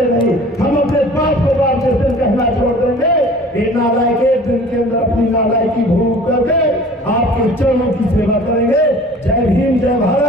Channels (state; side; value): normal; both; correlation 0.46